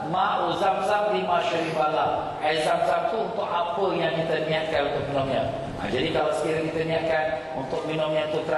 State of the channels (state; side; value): identical; both; correlation 1.00